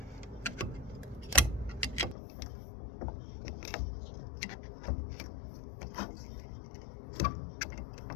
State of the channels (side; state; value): right; drops out; at 2.1 s